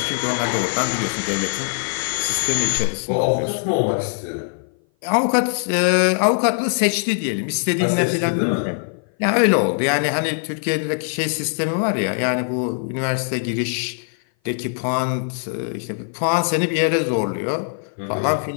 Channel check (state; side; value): silent; right; 57 dB below the other